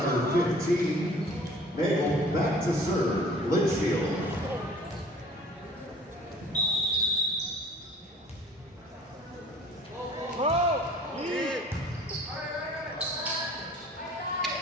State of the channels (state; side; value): normal; both; correlation 0.50